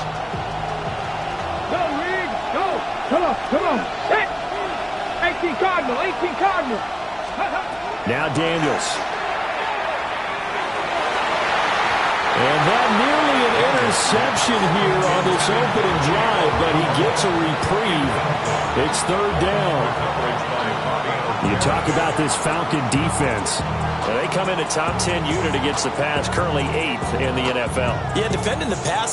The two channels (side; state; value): both; identical; correlation 1.00